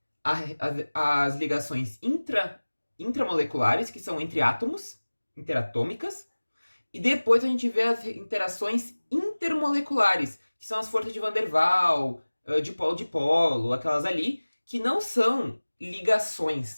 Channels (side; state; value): both; inverted; correlation -1.00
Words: as ligações intramoleculares, que são entre átomos, interatômicas. E depois a gente vê as interações intermoleculares, que são as forças de Van der Waals, dipolo, aquelas ali, que não são ligações,